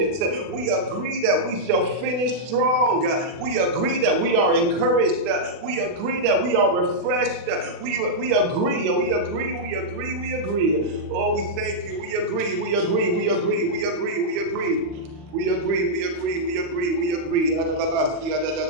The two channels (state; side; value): late; left; 40 ms